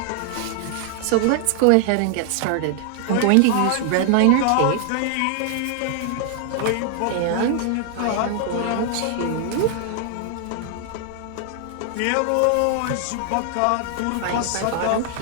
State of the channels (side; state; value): both; different; correlation 0.00